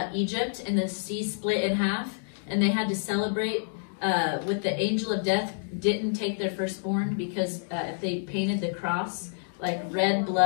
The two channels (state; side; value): silent; right; digital silence